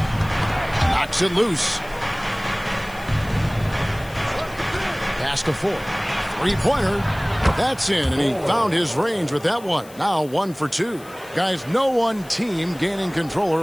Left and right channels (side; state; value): left; noise; hiss, 22 dB below the sound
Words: Knocks it loose. Pass to 4. Three-pointer. That's in, and he found his range with that one. Now 1 for 2. Guys, no one team gaining control